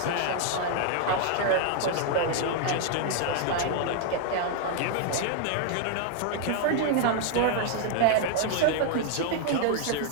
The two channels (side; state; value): both; different; correlation 0.00